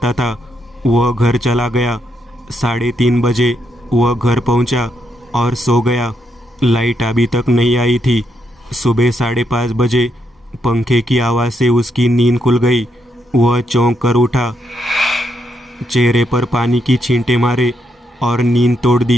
था। वह घर चला गया। 3:30 बजे वह घर पहुंचा और सो गया। लाइट अभी तक नहीं आई थी। सुबह 5:30 बजे पंखे की आवाज़ से उसकी नींद खुल गई। वह चौंक कर उठा, चेहरे पर पानी की छींटे मारे और नींद तोड़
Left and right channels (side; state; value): both; normal; correlation 0.79